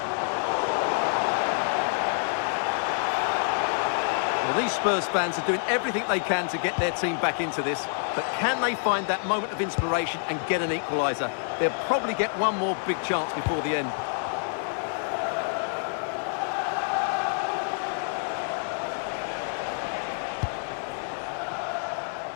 Well, these Spurs fans are doing everything they can to get their team back into this, but can they find that moment of inspiration and get an equaliser? They'll probably get one more big chance before the end.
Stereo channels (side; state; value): right; silent; digital silence